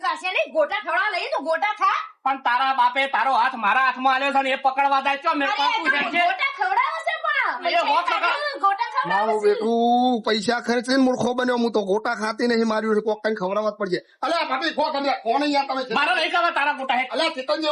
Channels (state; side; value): identical; both; correlation 1.00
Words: ખાશે નહીં ગોટા ખવડાવવા લઈએ તો ગોટા ખા. પણ તારા બાપે તારો હાથ મારા હાથમાં આલ્યો છે ને એ પકડવા જાય છો મેં અરે પાકું છે તમે ગોટા ખવડાવો છે પણ એ હોત લગા. ગોટા ખવડાવો મારું છે. બેટું પૈસા ખર્ચીને મૂર્ખો બન્યો હું તો ગોટા ખાતી નહીં માર્યું છે કોક કઈ ખવડાવવા જ પડશે અલ્યા ભાભી ખો તમે કોણ યાર તમે મારે નહીં ખાવા તારા ગોટા હે અલ્યા ચિકન